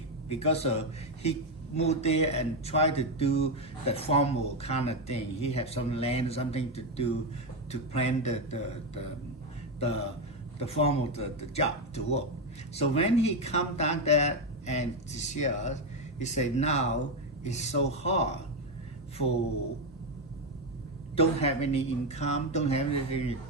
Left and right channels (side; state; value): both; normal; correlation 0.08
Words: because he moved there and tried to do the formal kind of thing. He had some land, something to do to plan the formal the job to work. So when he come down there and to see us, he said, now it's so hard for don't have any income, don't have anything to